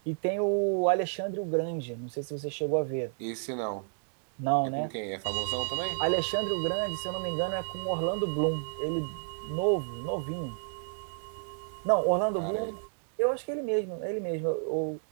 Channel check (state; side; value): silent; left; digital silence